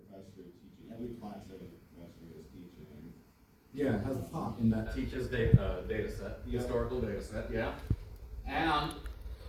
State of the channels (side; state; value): both; identical; correlation 1.00